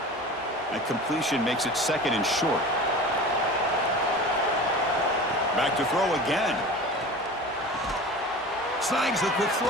That completion makes it 2nd and short. Back to throw again. Snags the quick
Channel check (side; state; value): both; normal; correlation 0.36